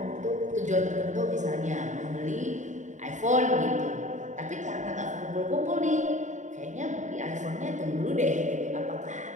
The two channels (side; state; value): left; late; 0.35 ms